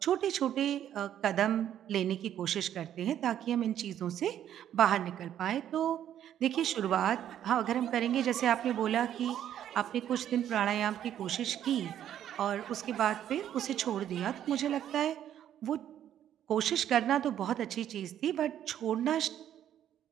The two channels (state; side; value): quieter; left; 10.6 dB